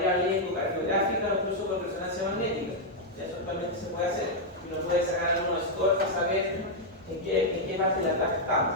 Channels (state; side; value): normal; both; correlation -0.03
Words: ecocardiográfica o incluso con resonancia magnética. Eso es actualmente se puede hacer. Y uno puede sacar algunos scores para saber en qué parte de la tabla